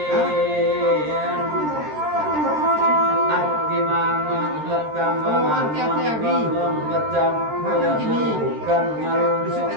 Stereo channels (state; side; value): late; left; 13 ms